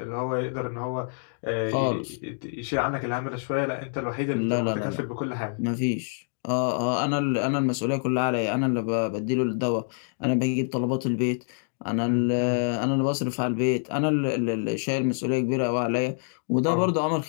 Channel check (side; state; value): right; silent; digital silence